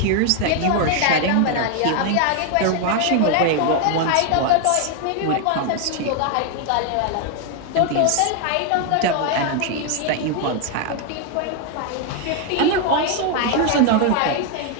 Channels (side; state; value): both; different; correlation 0.01